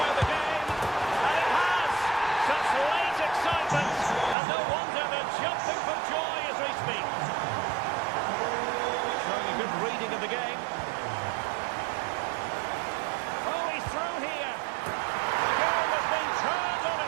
the game, and it has! Such late excitement, and no wonder they're jumping for joy as we speak. Showing a good reading of the game. Oh, he's through here. The game has been turned on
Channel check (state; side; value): drops out; left; at 4.4 s